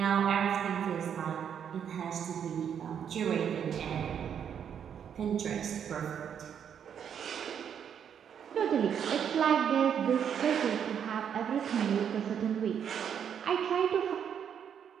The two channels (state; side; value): quieter; left; 8.3 dB